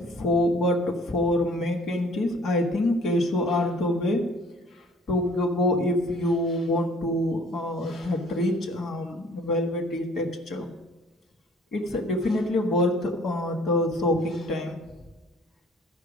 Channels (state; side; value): normal; both; correlation 0.54